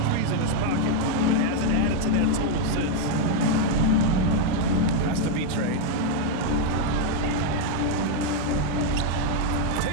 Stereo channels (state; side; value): different; both; correlation 0.01